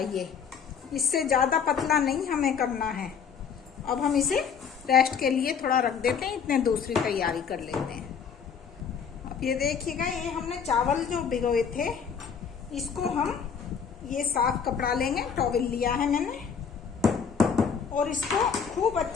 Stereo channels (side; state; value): right; quieter; 6.8 dB